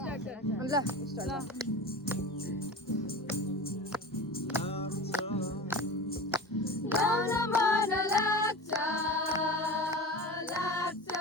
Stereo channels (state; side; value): normal; both; correlation 0.31